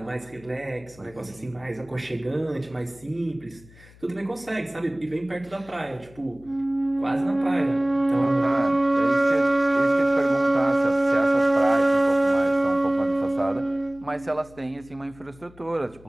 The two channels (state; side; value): noise; left; hum, 24 dB below the sound